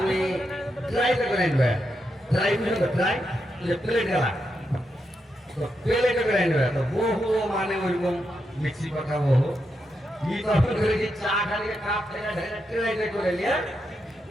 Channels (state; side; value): normal; both; correlation 0.84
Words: ট্রাইটা করে নেবে ট্রাই করবে ট্রাই প্লেট গেলা তো প্লেটে করে নেবে তো বহু মানে ওইরকম মিক্সি কথা বহু ই তখন করে কি চা খালি কাপ থেকে ঢেলে ট্রাইটা করে নিয়ে